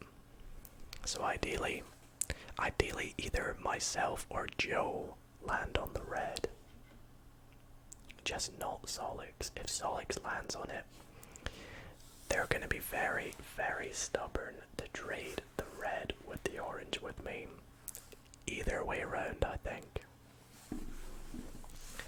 So ideally either myself or Joe land on the red. Just not Solix. If Solix lands on it, they're going to be very, very stubborn to trade the red with the orange with me. Either way around, I think.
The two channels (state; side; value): identical; both; correlation 1.00